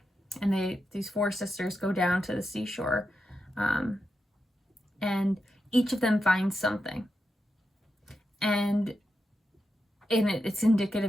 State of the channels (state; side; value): normal; both; correlation 0.88